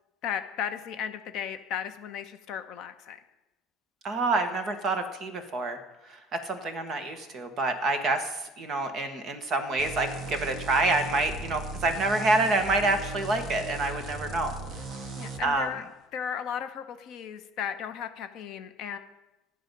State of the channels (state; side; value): normal; both; correlation 0.49